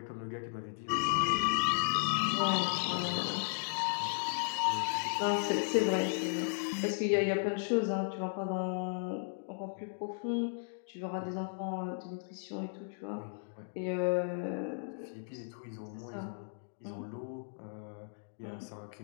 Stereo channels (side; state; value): right; silent; digital silence